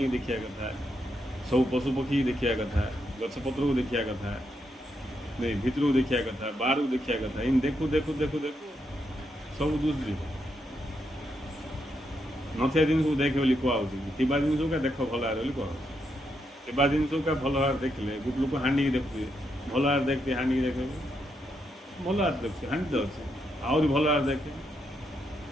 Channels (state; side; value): normal; both; correlation 0.81